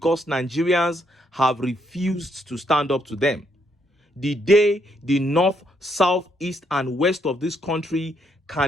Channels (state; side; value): normal; both; correlation 0.74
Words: Nigerians have refused to stand up to them. The day the north, south, east, and west of this country